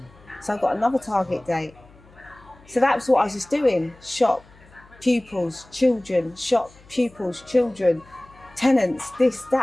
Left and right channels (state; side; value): noise; left; hum, 26 dB below the sound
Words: So I've got another target date. So that was what I was just doing. Shop, pupils, children, shop, pupils, children, tenants, this,